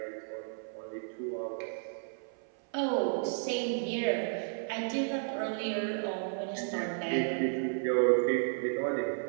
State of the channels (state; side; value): silent; left; 56 dB below the other